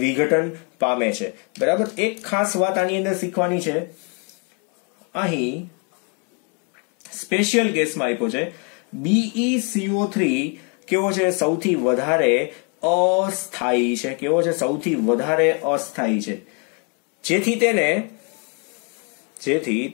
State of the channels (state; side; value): quieter; right; 35.7 dB